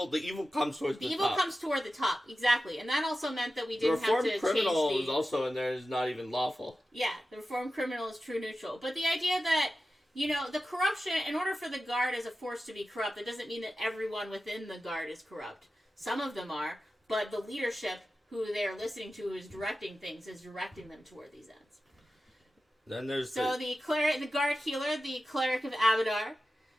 comes towards the top. The evil comes toward the top, exactly. And that also meant that we didn't have to change the Reformed Criminal is also in there, is not even lawful. Yeah, the Reformed Criminal is true neutral. But the idea that the corruption, in order for the Guard as a force to be corrupt, that doesn't mean that everyone within the Guard is corrupt. Some of them are, but the leadership, who they're listening to, who is directing things, is directing them toward these ends. Then there's the Guard Healer, the Cleric of Abadar,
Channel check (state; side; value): normal; both; correlation 0.93